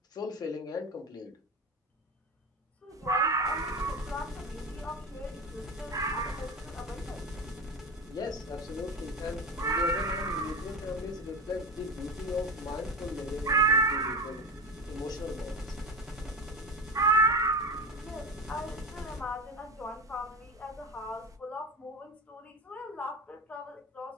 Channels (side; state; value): both; normal; correlation 0.23